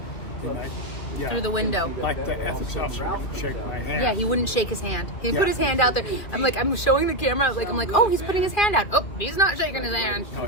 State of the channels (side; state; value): right; late; 2.4 ms